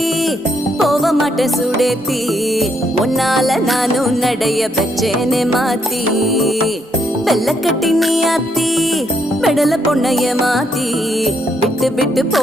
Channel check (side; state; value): both; normal; correlation 0.75